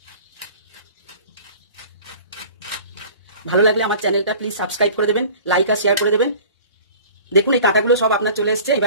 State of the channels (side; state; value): both; inverted; correlation -0.44